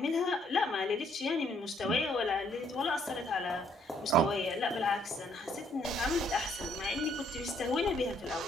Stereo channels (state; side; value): normal; both; correlation 0.66